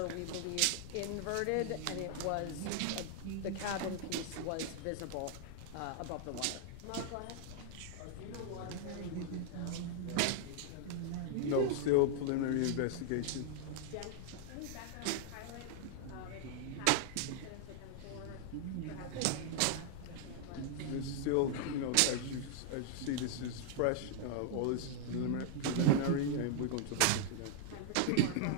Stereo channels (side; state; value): both; different; correlation -0.01